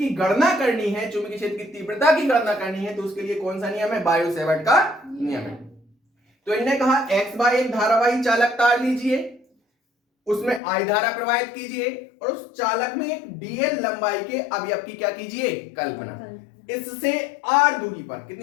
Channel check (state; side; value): drops out; right; at 10.6 s